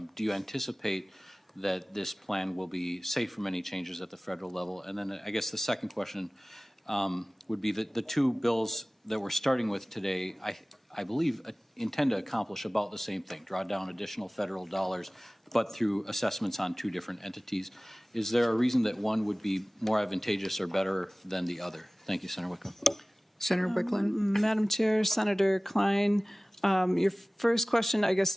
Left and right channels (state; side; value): normal; both; correlation 0.98